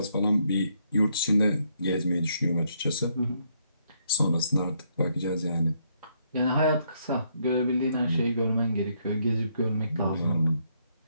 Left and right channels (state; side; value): inverted; both; correlation -0.73